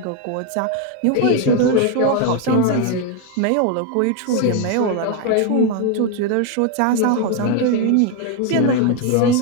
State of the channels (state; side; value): different; both; correlation 0.01